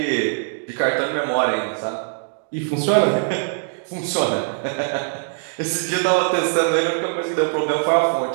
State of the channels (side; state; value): left; silent; digital silence